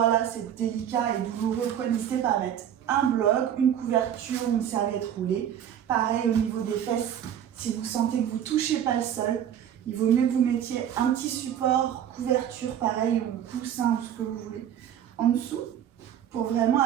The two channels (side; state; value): left; quieter; 9.8 dB